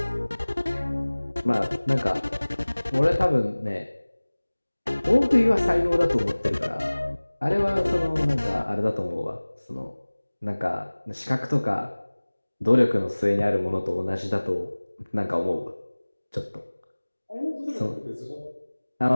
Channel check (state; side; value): inverted; both; correlation -1.00